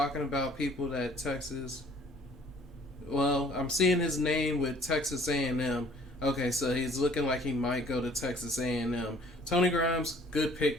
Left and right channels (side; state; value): both; normal; correlation 0.56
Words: about people that Texas... Well, I'm seeing his name with Texas A&M. Okay, so he's looking like he might go to Texas A&M. Tony Grimes, good